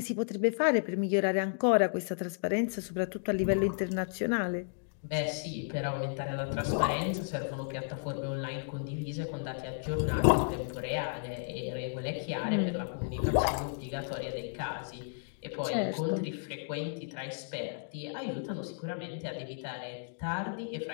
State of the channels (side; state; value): right; silent; digital silence